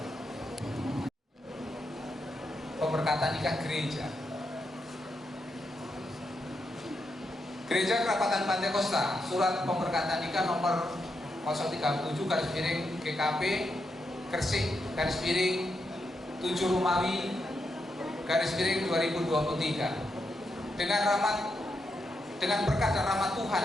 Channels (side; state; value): both; normal; correlation 0.83